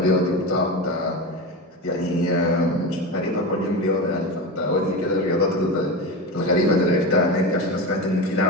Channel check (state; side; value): normal; both; correlation 0.22